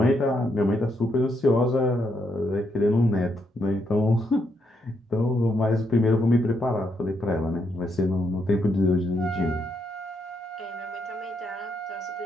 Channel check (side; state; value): both; normal; correlation 0.78